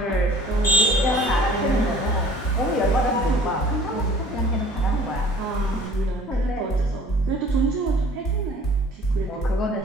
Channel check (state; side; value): normal; both; correlation 0.50